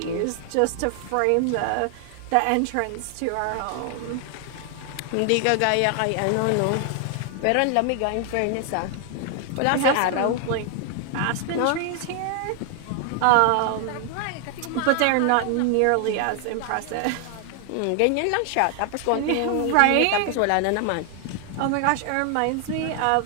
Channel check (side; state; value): both; different; correlation 0.00